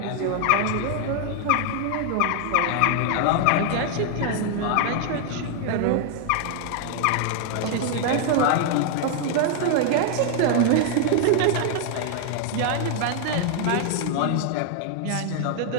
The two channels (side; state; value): both; different; correlation 0.00